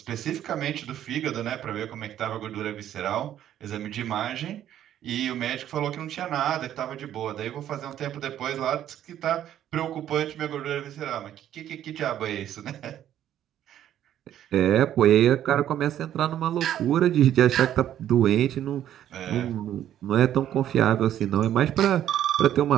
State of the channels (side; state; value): left; quieter; 11.2 dB